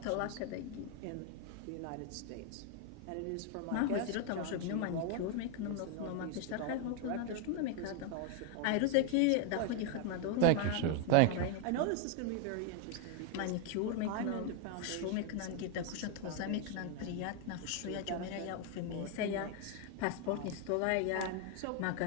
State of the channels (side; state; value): both; different; correlation 0.01